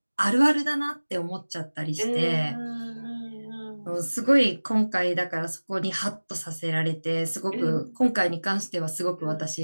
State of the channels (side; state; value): both; inverted; correlation -1.00